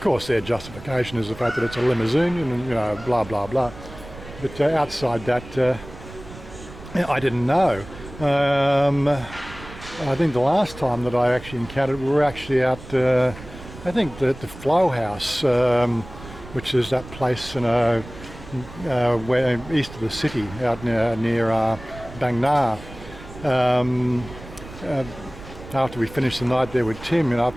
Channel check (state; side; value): noise; right; rumble, 16 dB below the sound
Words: course, their justification is the fact that it's a limousine, and blah blah blah. But outside that, I didn't know. I think the last time that I actually encountered, we were actually out, I think the Flow House, which is that place where east of the city, out near Bang Na. After we finished the night there with Tim,